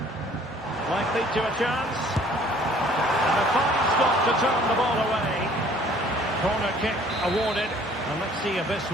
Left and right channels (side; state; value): both; normal; correlation 0.55